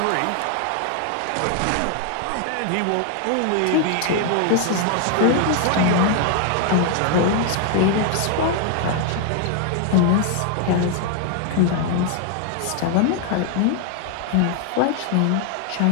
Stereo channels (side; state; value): both; different; correlation 0.00